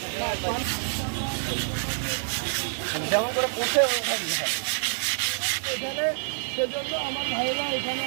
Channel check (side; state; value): left; silent; digital silence